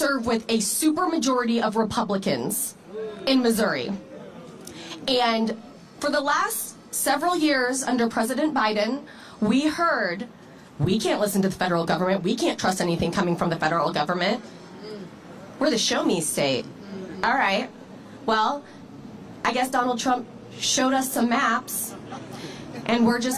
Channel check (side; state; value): both; identical; correlation 1.00